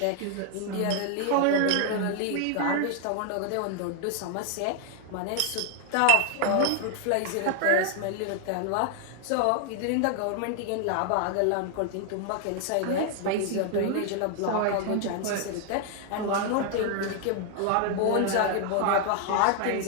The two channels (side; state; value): both; different; correlation 0.00